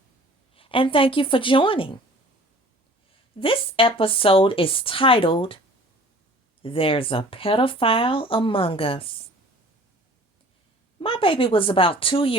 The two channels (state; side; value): normal; both; correlation 0.48